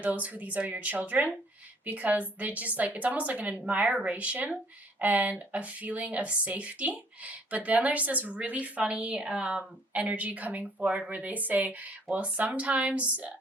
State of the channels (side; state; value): both; normal; correlation 0.61